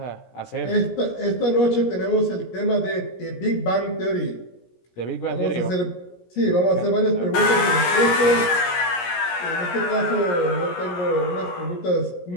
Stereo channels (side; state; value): right; late; 17 ms